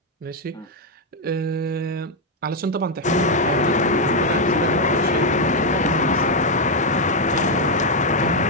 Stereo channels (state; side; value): normal; both; correlation 0.02